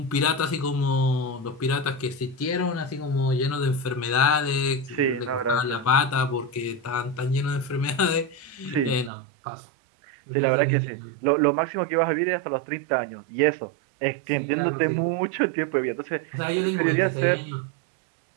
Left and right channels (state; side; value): drops out; left; at 9.1 s